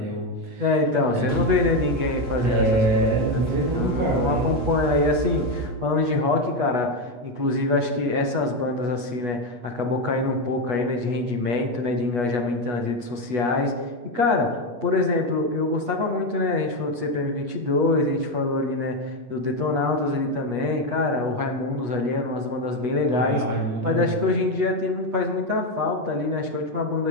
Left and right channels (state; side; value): late; left; 8.3 ms